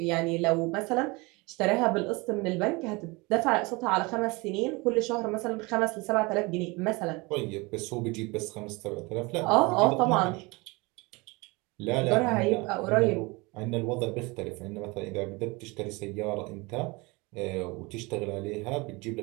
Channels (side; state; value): left; quieter; 25.6 dB